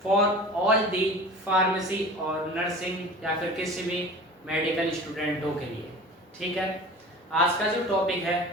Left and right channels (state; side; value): normal; both; correlation 0.38